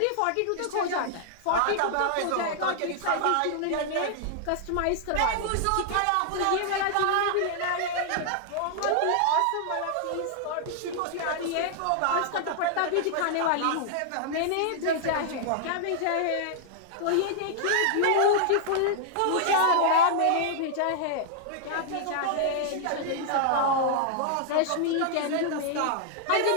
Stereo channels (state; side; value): different; both; correlation -0.01